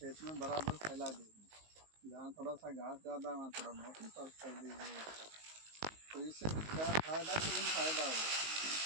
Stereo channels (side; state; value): left; late; 19 ms